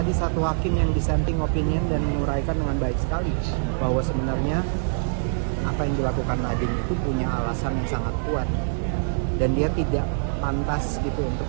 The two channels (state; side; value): silent; left; digital silence